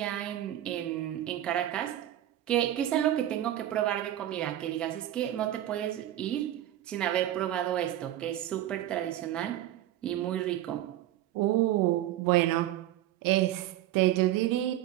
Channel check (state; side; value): quieter; left; 13.1 dB